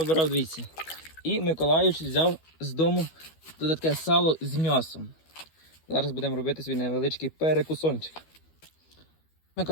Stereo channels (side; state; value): right; late; 12 ms